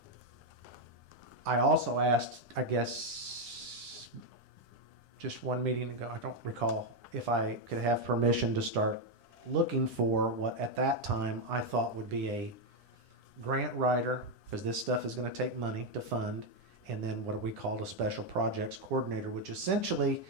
I also asked, I guess, just one meeting ago, I don't recall, if I could have permission to start looking for what at that time I thought would be a grant writer, because this stuff is going to take money to fund, and then what we call a special projects coordinator, which essentially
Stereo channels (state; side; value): late; left; 9.9 ms